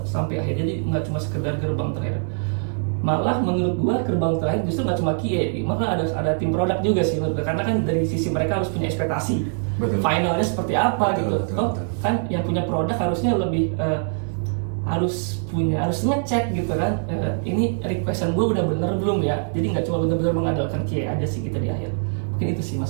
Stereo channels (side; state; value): left; silent; digital silence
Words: sampai akhir. Jadi nggak cuma sekedar gerbang terakhir. Malah menurut gua gerbang terakhir justru nggak cuma QA, malah ada tim produk juga sih menurut gua. Karena kan dari sisi mereka harus punya ekspektasi. Betul. Finalnya seperti apa gitu. Betul. Kan yang punya produk harusnya lebih harus ngecek gitu kan. Ini requestan gua udah bener belum ya. Jadi nggak cuma bener-bener mengandalkan QA aja sih kita di akhir. Mungkin itu sih